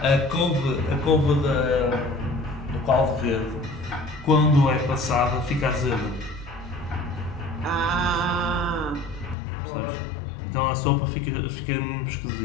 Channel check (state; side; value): drops out; right; at 9.3 s